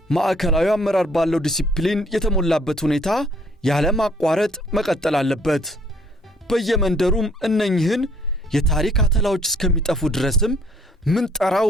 ማዕከላዊ አመራር ባለው ዲሲፕሊን የተሞላበት ሁኔታ ያለማቋረጥ መቀጠል አለበት። በየመንደሩም እነኝህን የታሪክ አተላዎች እስከሚጠፉ ድረስም ምንጠራው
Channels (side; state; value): both; normal; correlation 0.62